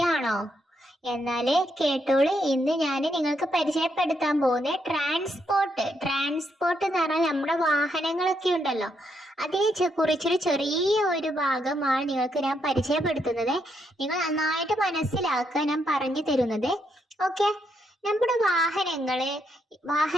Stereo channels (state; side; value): normal; both; correlation 0.78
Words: എന്നാല് കേട്ടോളൂ. ഇന്ന് ഞാൻ നിങ്ങൾക്ക് പരിചയപ്പെടുത്താൻ പോകുന്ന ട്രാൻസ്പോർട്ട് എന്ന് പറഞ്ഞാൽ നമ്മുടെ വാഹനങ്ങളൊക്കെ ഉണ്ടല്ലോ, അതിനെ കുറിച്ചൊരു ചെറിയ ഒരു ഭാഗമാണ് നിങ്ങൾക്ക് ഞാൻ പരിചയപ്പെടുത്തുന്നത്. നിങ്ങൾ നന്നായിട്ട് മനസ്സിലാക്കുക ഞാൻ പറഞ്ഞു തരുന്നത്. ഓക്കെ, നമ്മുടെ